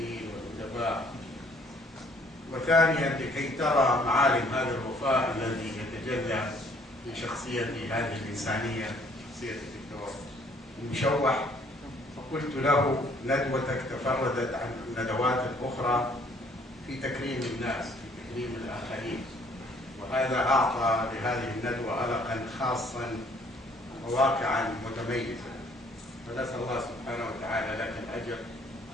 والأدباء، وثانيا لكي ترى معالم هذا الوفاء الذي يتجلى في شخصية هذه الإنسانية، شخصية الدكتور المشوح. فقلت له ندوتك تفردت عن الندوات الأخرى في تكريم الناس، في تكريم الآخرين، وهذا أعطى لهذه الندوة ألقا خاصا وواقعا متميزا، فنسأل الله سبحانه وتعالى لك الأجر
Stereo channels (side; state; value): both; normal; correlation 0.61